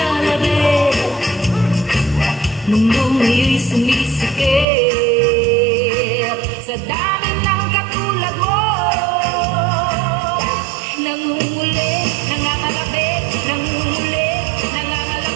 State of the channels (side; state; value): left; drops out; at 4.7 s